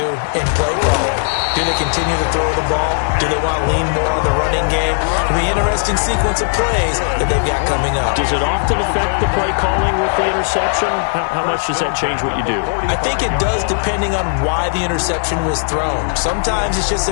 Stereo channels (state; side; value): silent; right; digital silence